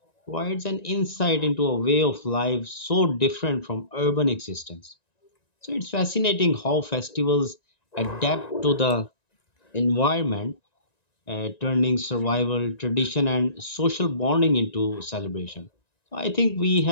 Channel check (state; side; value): late; right; 1.9 ms